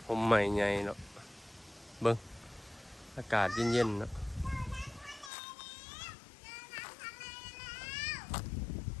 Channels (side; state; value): right; drops out; at 5.3 s